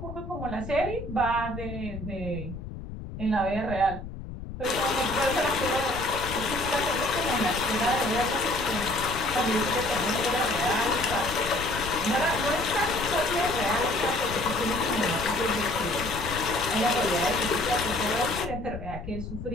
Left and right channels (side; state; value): left; noise; rumble, 10 dB below the sound